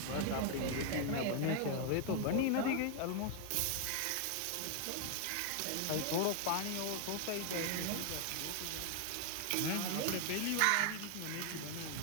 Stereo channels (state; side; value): different; both; correlation 0.00